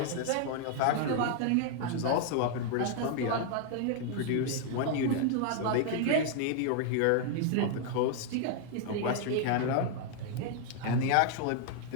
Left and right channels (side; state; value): both; different; correlation 0.00